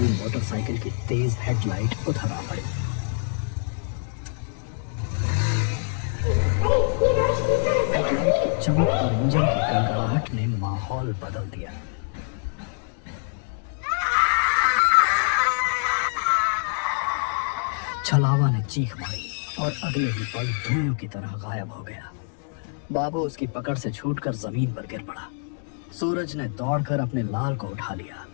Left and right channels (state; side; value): silent; right; digital silence